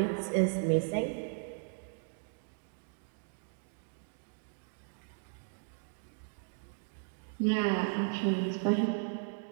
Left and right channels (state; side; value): silent; left; digital silence